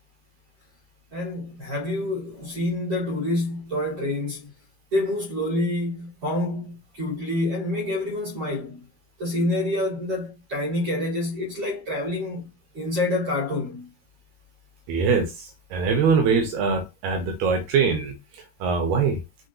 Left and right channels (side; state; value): left; late; 13 ms